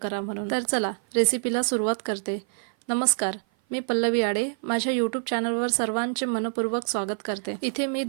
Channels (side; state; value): left; silent; 56 dB below the other